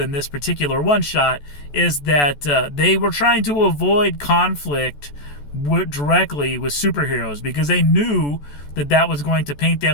this particular one shot, is that they were trying to avoid conflict directly with superheroes because they knew that was going to paint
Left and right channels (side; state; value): right; late; 14 ms